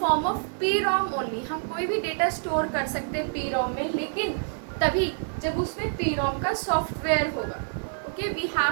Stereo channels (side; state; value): left; silent; digital silence